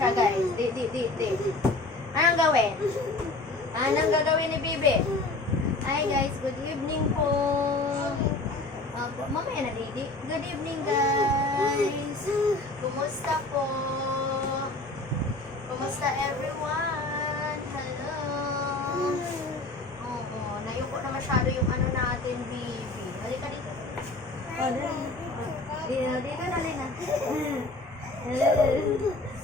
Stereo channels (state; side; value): quieter; right; 3.0 dB